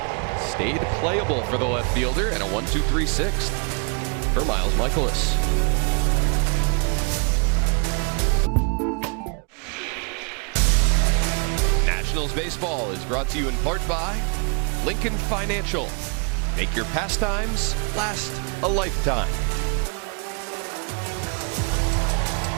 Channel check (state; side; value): quieter; left; 36.4 dB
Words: Stayed playable for the left fielder, and a 1-2-3 sixth for Miles Michaelis. Nationals baseball is brought to you in part by Lincoln Financial. Make your pastimes last a lifetime.